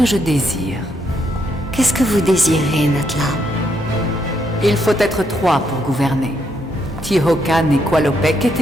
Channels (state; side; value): normal; both; correlation 0.77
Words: je désire. Qu'est-ce que vous désirez, Natla? Il faut être 3 pour gouverner. Tihocan et Qualopec